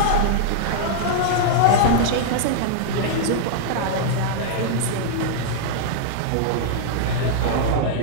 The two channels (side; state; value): both; different; correlation -0.01